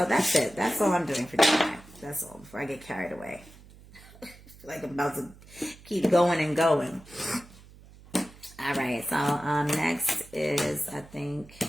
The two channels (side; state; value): right; noise; hum, 22 dB below the sound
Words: that's it. That's all I'm doing for Gemini. That's all, before I get carried away. I feel like I'm about to keep going and going. All right, so next is, I think,